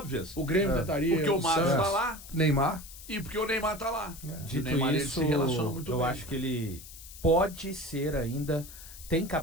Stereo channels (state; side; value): noise; left; hiss, 16 dB below the sound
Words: O Grêmio tentaria. Porque o Marcos Santos. tá lá Neymar. e porque o Neymar tá lá. O Dito Neymar ele isso, se relaciona muito eu bem. acho que ele pode ser ainda, tem